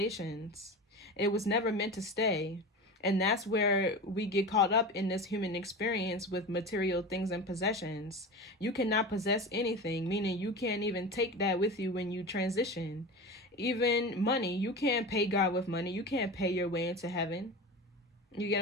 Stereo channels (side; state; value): both; normal; correlation 0.29